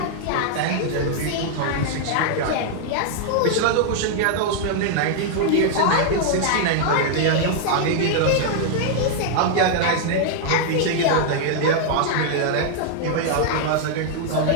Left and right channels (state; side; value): different; both; correlation -0.01